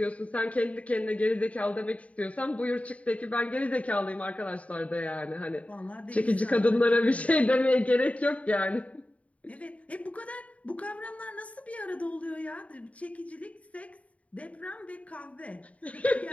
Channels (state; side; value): late; right; 0.067 ms